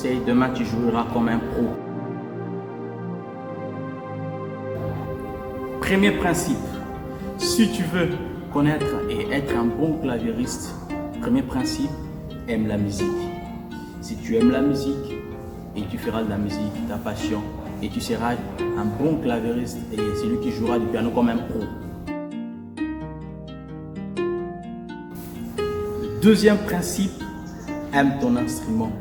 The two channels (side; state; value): both; identical; correlation 1.00